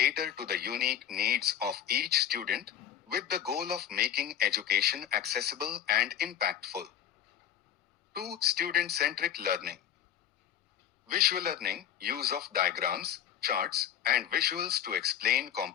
to the unique needs of each student, with the goal of making education accessible and impactful. 2. Student-centric learning. Visual learning, use of diagrams, charts, and visuals to explain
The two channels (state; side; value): quieter; right; 10.1 dB